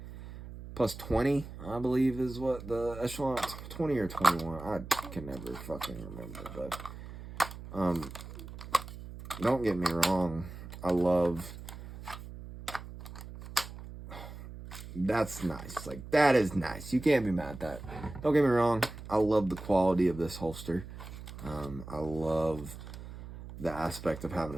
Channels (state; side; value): noise; right; hum, 12 dB below the sound